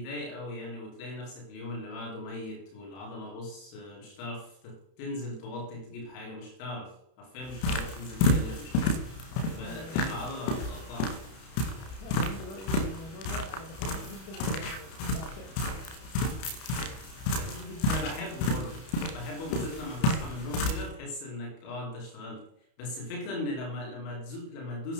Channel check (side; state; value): right; late; 31 ms